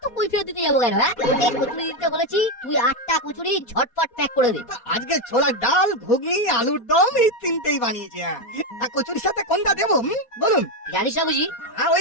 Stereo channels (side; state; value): right; late; 4.2 ms